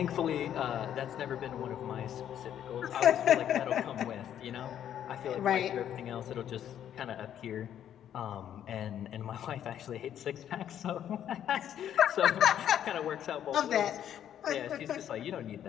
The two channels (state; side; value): quieter; right; 10.2 dB